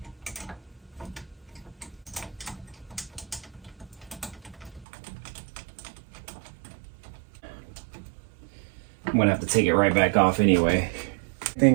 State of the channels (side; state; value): left; drops out; at 4.9 s